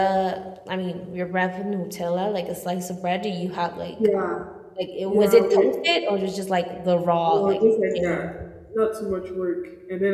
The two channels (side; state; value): both; identical; correlation 1.00